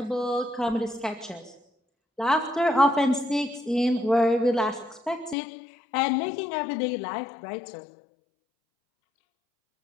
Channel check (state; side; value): drops out; right; at 5.4 s